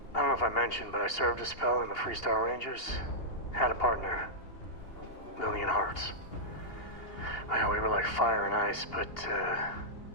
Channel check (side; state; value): right; late; 2.8 ms